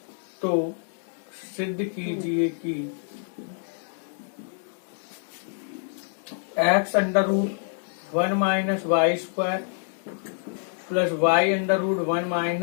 x under root 1 minus Y square plus y under root 1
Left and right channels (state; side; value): silent; right; digital silence